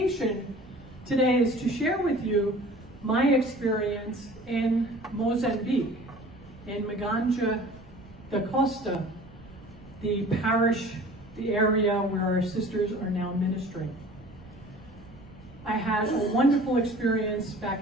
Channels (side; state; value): right; noise; rumble, 24 dB below the sound